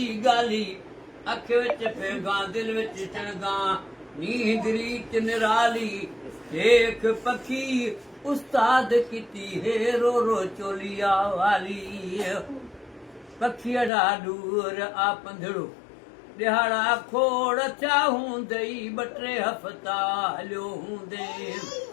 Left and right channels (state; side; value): drops out; right; at 13.9 s